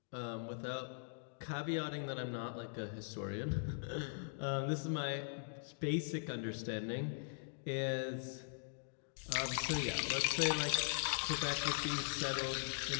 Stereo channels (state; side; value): silent; right; digital silence